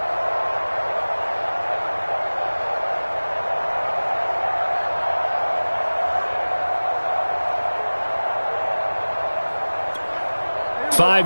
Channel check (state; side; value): inverted; both; correlation -1.00